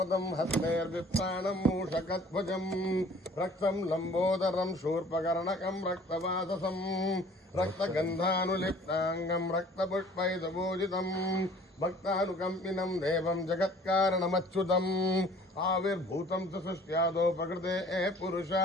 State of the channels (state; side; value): normal; both; correlation 0.51